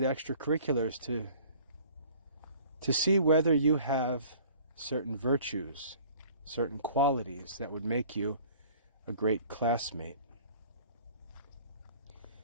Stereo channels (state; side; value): inverted; both; correlation -0.50